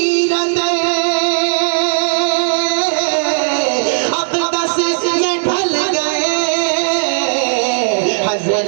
अक़दस ये ढल गए,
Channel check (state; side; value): silent; left; digital silence